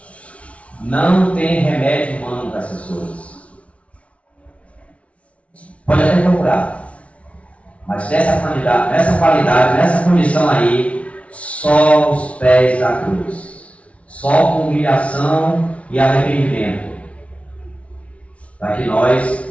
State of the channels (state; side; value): late; right; 0.063 ms